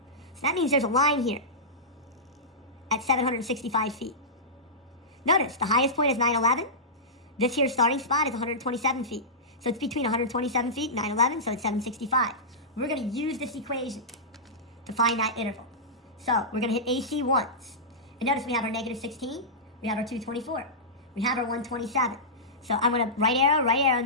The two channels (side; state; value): both; normal; correlation -0.15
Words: that means there's a line here at 765 feet. Notice, the highest point is 911. This here starting spot is 127 feet. So it's between 127 feet and 911, so it's 765. We're going to use this equation to find that interval. So we're going to hit AC once. And notice we have our negative 16, we have our 224, we have our 127. So I'm going to right arrow,